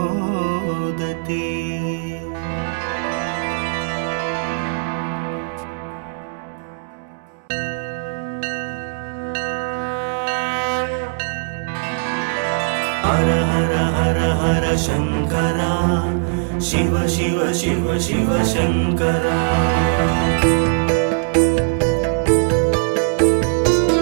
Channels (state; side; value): silent; left; 66 dB below the other